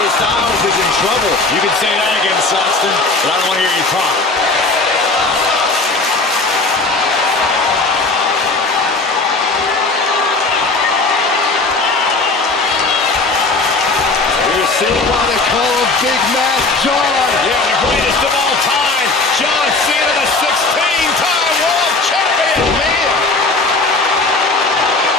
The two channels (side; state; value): right; quieter; 3.5 dB